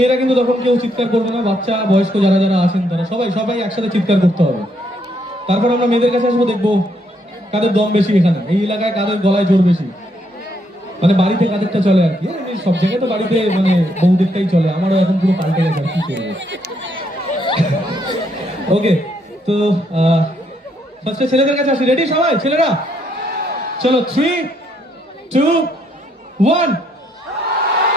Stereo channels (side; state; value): both; normal; correlation 0.73